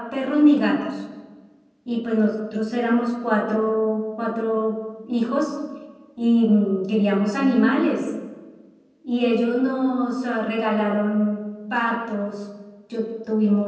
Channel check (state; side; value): identical; both; correlation 1.00